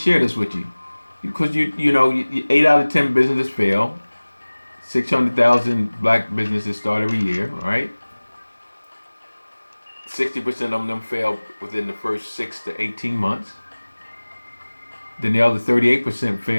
this with you, because you know 8 out of 10 businesses fail. 600,000 black businesses start every year, right? 60% of them fail within the first 6 to 18 months. Then the other 38%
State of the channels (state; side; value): inverted; both; correlation -1.00